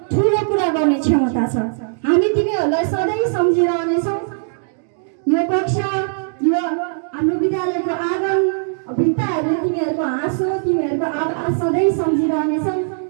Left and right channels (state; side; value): silent; left; digital silence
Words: ठुलो कुरा गर्ने क्षमता छ। हामी तिमीहरूलाई सधैँ सम्झिरहनेछौँ। यो कक्षा, यो हाम्रो विद्यालयको आँगन, भित्ताहरूले तिमीहरूको हाँसो, तिमीहरूको आवाज सधैँ सम्झिरहनेछौँ।